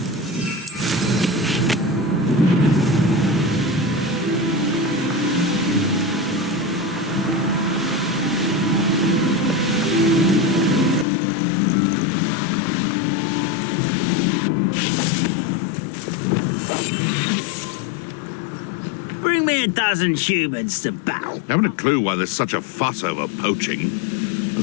Bring me a dozen humans to battle. Haven't a clue why there's such a fuss over poaching.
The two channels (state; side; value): drops out; right; at 11.1 s